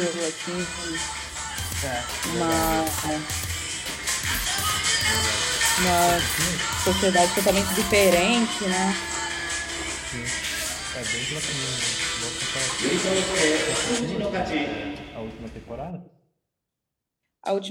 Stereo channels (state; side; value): identical; both; correlation 1.00